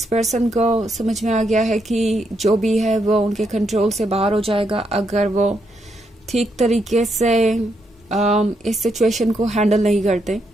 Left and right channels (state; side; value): normal; both; correlation 0.79